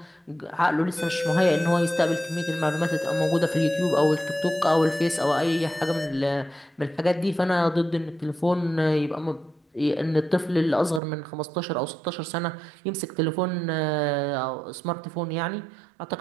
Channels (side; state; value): left; drops out; at 11.0 s